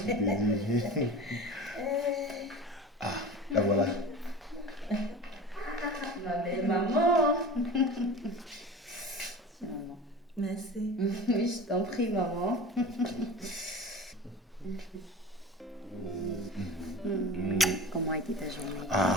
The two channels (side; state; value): both; normal; correlation 0.35